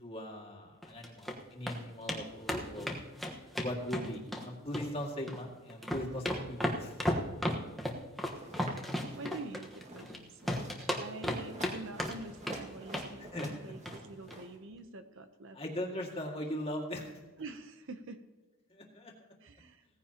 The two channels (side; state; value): both; normal; correlation 0.66